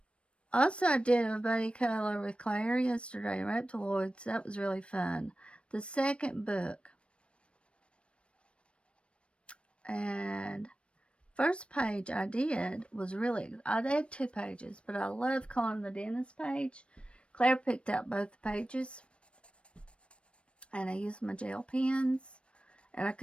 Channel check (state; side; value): late; right; 0.059 ms